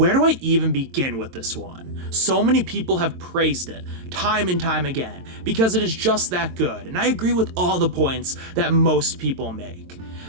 do I even begin with this one? So many people have praised it time and time again because it is just that good, and I agree with all the points that most people make.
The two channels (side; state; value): left; late; 22 ms